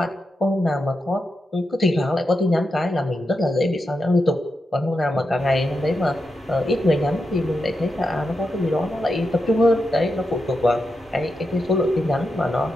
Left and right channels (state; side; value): normal; both; correlation 0.87